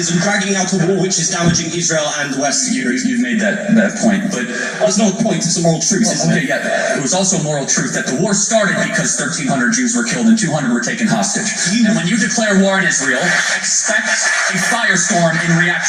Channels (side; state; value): both; identical; correlation 1.00